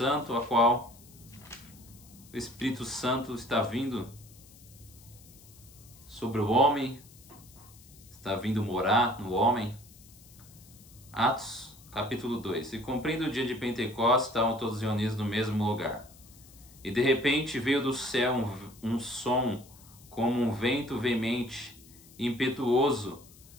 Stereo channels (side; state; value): left; noise; hiss, 23 dB below the sound